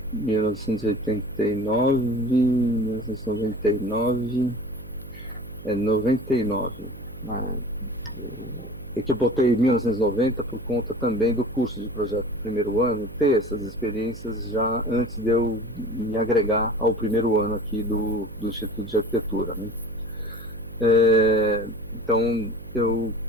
1989, 1999, 99. É que eu botei 1990 por conta também do curso de projeto do primeiro ano, ter essas experiências já antes de eu me agregar ao primeiro ano aqui do Instituto de Arquitetura, né? Então eu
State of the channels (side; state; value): right; noise; hum, 17 dB below the sound